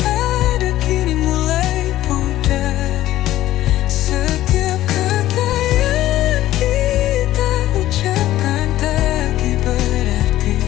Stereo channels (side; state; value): right; quieter; 14.4 dB